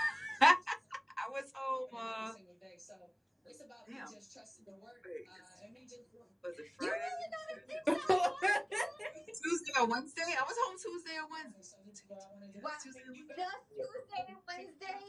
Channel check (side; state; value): both; identical; correlation 1.00